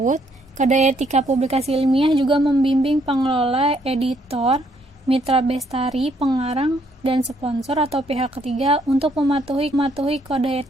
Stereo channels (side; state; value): both; normal; correlation 0.70